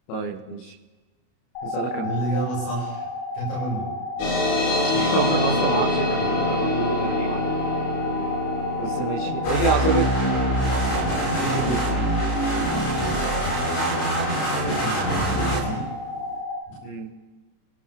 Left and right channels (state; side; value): late; right; 32 ms